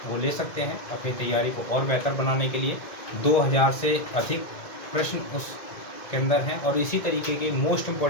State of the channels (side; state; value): right; late; 2.1 ms